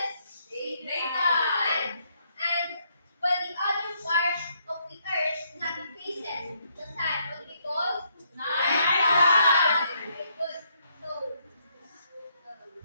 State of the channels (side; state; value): both; inverted; correlation -0.73